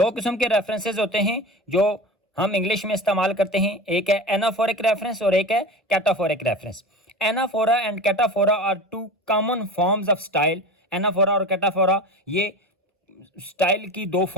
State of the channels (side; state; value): both; normal; correlation 0.31